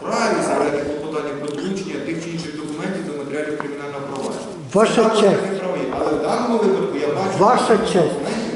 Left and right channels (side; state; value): both; identical; correlation 1.00